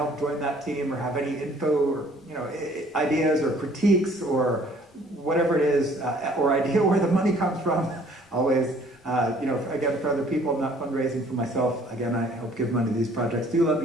join that team or have any info or ideas or critiques or whatever it is, or idea where the money comes from, always, again, for other people, I'm not fundraising for myself. Again, I help give money to these projects. Do let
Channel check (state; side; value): normal; both; correlation 0.57